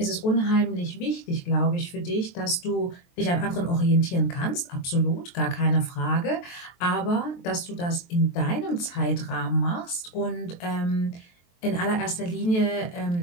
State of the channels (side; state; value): right; late; 23 ms